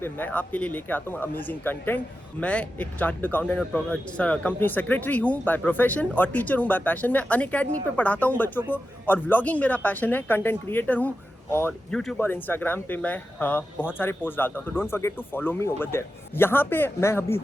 मैं आपके लिए लेके आता हूँ अमेजिंग कंटेंट। मैं एक चार्टर्ड अकाउंटेंट और कंपनी सेक्रेटरी हूँ बाय प्रोफेशन और टीचर हूँ बाय पैशन। मैं अनअकैडमी पे पढ़ाता हूँ बच्चों को और व्लॉगिंग मेरा पैशन है। कंटेंट क्रिएटर हूँ और YouTube और Instagram पे मैं बहुत सारे पोस्ट डालता हूँ, तो don't forget to follow me over there. यहाँ पे मैं अभी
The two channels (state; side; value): normal; both; correlation 0.91